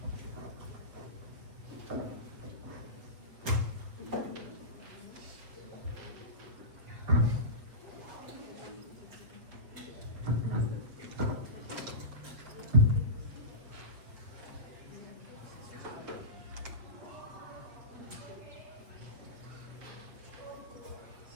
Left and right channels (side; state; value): left; late; 7.4 ms